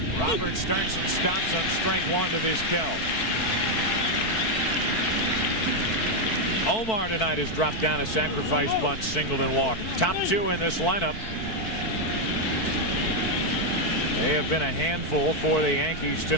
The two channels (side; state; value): right; late; 4.7 ms